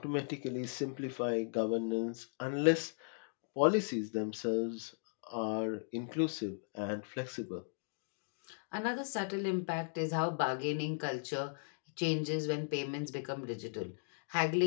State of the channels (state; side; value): silent; right; digital silence